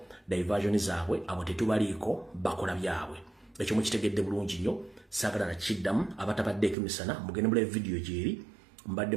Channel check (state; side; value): drops out; left; at 6.8 s